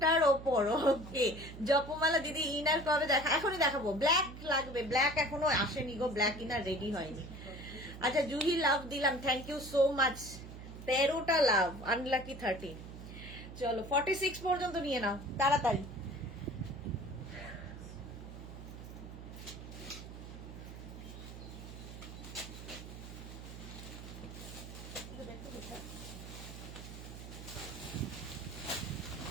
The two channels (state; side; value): noise; right; hum, 12 dB below the sound